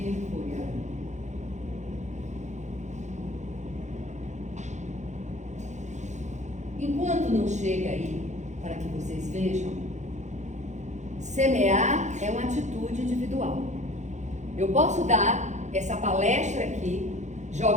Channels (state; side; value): late; left; 0.34 ms